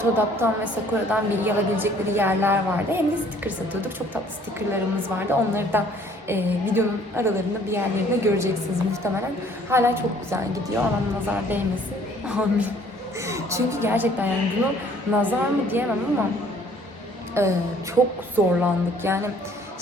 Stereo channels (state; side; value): normal; both; correlation 0.58